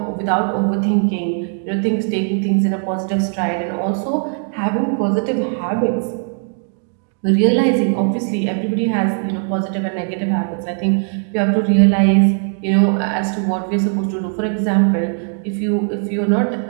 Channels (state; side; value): silent; left; 58 dB below the other